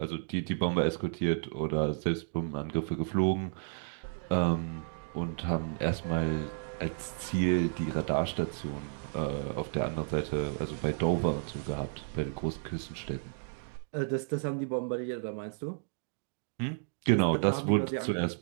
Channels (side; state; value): left; silent; digital silence